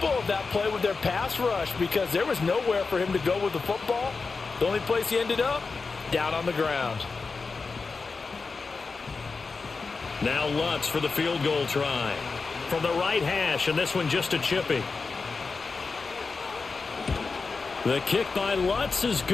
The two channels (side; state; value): right; quieter; 4.4 dB